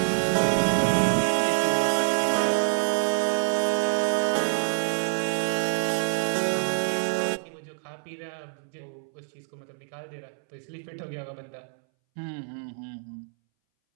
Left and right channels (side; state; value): left; silent; 61 dB below the other